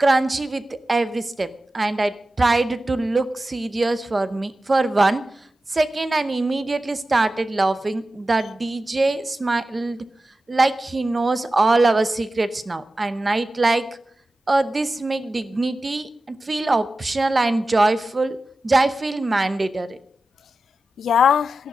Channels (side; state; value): both; normal; correlation 0.93